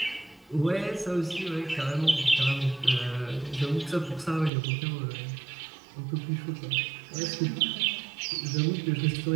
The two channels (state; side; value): drops out; left; at 4.5 s